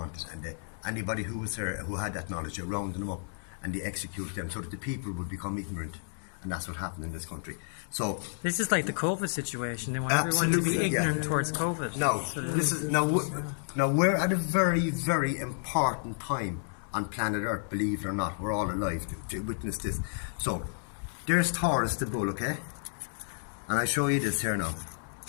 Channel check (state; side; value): silent; right; digital silence